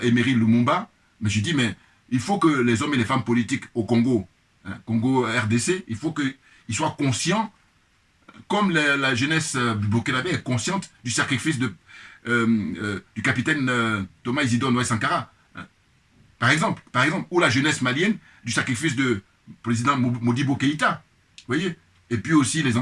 Emery Lumumba, mais je dis, mais il faut que les hommes et les femmes politiques au Congo, hein, Congo RDC, il faut qu'ils soient conscients, comme la jeunesse burkinabé est consciente du sacrifice du capitaine Thomas Isidore Noé Sankara. Hein. Par exemple, ou la jeunesse malienne du sacrifice du président Modibo Keïta. Vous voyez? Et puis aussi les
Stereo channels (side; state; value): both; identical; correlation 1.00